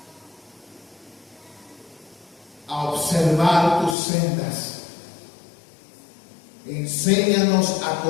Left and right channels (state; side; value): drops out; right; at 4.0 s